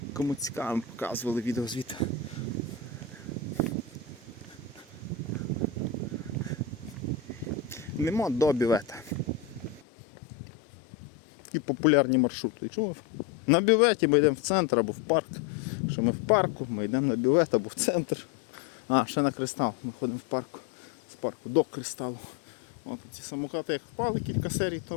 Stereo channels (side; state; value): right; drops out; at 9.9 s